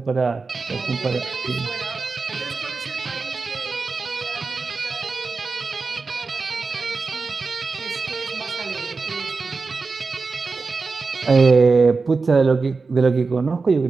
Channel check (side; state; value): left; quieter; 4.3 dB